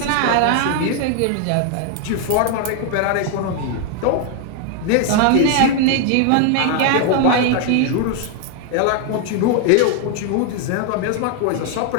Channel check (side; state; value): both; different; correlation 0.00